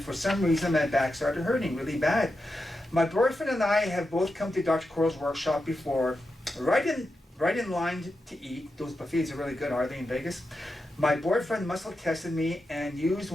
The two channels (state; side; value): normal; both; correlation 0.88